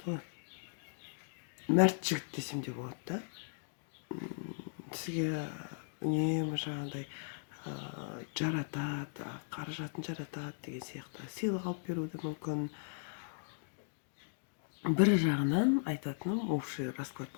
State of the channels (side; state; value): right; silent; digital silence